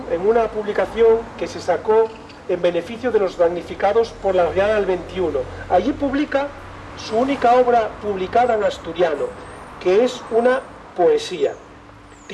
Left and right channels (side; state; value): both; identical; correlation 1.00